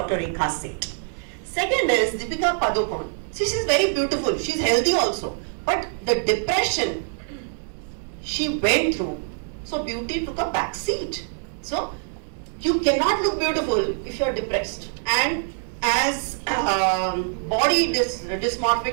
Rekha Seth. Second is Deepika Padukone. See, she's very beautiful, she's healthy also, but the depression she went through, so beauty took a back seat. So you cannot look beautiful if you're depressed. And as body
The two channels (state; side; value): silent; left; 62 dB below the other